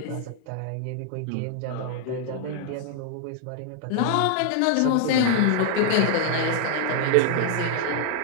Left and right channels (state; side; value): different; both; correlation 0.00